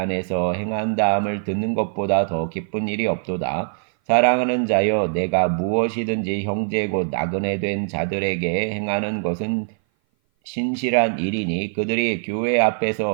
행한다함을 듣는 것보다 더 기쁜 일이 없도다. 사랑하는 자여 내가 무엇이든지 형제 곧 나그네 된 자들에게 행하는 것은 신실한 일이니 그들이 교회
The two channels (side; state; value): left; silent; 57 dB below the other